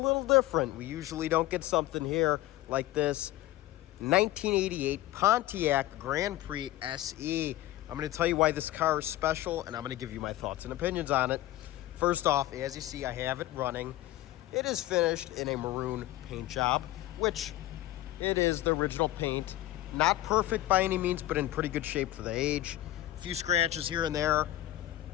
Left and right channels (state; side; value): quieter; right; 15.3 dB